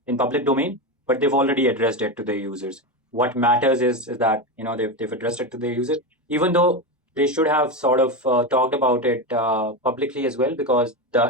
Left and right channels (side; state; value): both; normal; correlation 0.16